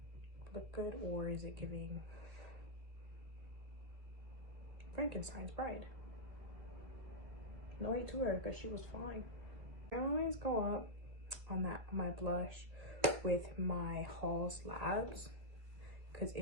look good, or is it giving Frankenstein's bride? No hate to her, because she was fine. I always go up on my blush with my Halls Labs, because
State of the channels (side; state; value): left; late; 1.7 ms